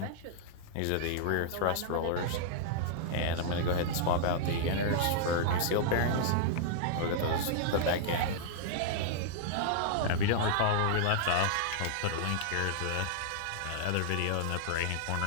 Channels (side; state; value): both; different; correlation -0.01